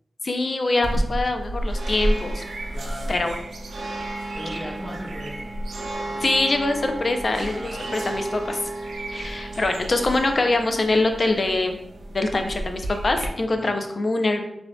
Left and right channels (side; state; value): both; normal; correlation 0.94